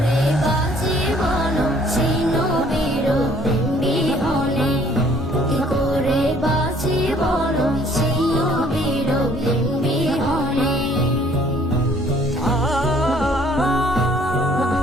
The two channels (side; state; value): both; normal; correlation 0.60